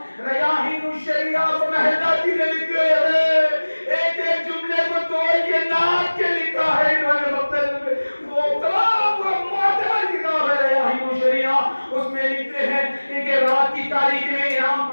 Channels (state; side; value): inverted; both; correlation -1.00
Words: ریاحین الشریعہ کو مہداتی نے لکھے ہیں، ایک ایک جملے کو توڑ کے ناک کے لکھا ہے انہوں نے مقتل میں. وہ تمام معتبر کتاب ہے ریاحین الشریعہ.